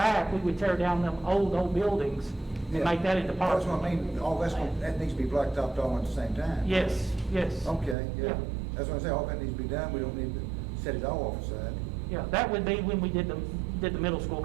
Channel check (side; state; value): left; drops out; at 8.0 s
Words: we would tear down them old buildings and make that into That's what parking. I mean, all that needs to be blacktopped all at the same time. Yes. Okay, Yeah. yeah. That's what I say, all that needs to be done, we don't need to set it all off aside. Yeah, that would be when we did the middle school,